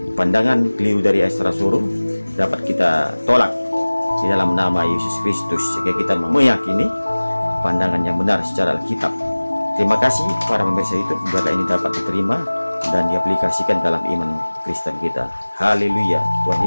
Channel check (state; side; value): inverted; both; correlation -1.00